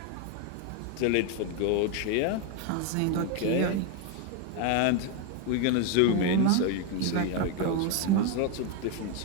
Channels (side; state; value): both; different; correlation 0.01